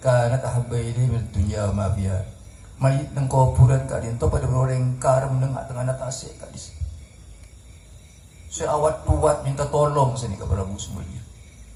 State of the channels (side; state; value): both; identical; correlation 1.00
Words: kanat ahabba ilayhi min dunya ma fiha. Mayit ng kuburan ka din to pada orang karam ng atang anatase ka dis. Si awat tuwat minta tolong sini kepada Prabu semuanya.